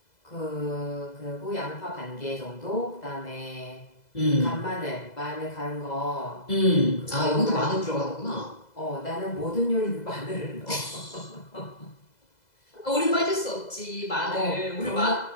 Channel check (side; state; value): right; late; 2.0 ms